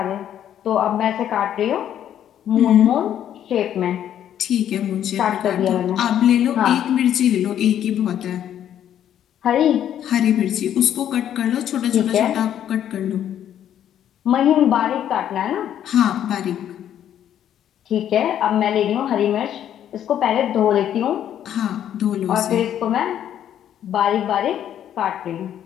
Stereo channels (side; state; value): right; quieter; 10.4 dB